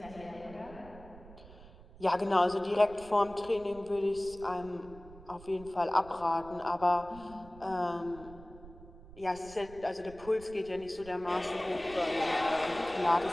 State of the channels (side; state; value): right; noise; rumble, 19 dB below the sound